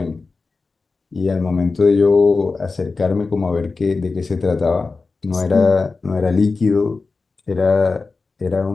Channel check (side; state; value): right; quieter; 4.1 dB